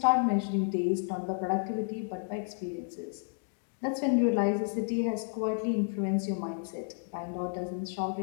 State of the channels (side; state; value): right; silent; digital silence